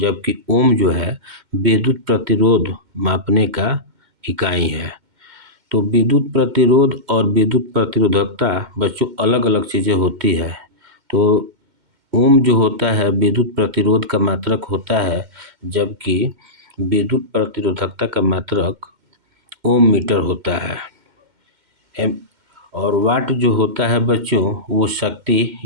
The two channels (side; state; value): left; late; 2.1 ms